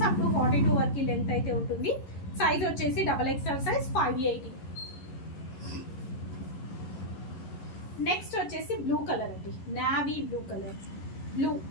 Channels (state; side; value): late; right; 11 ms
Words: అప్ టు 42 వరకు లెంత్ అయితే ఉంటుంది. సైజ్ వచ్చేసి XXL సైజ్ 580. నెక్స్ట్ వచ్చేసి బ్లూ కలర్ అండి. Navy blue colour.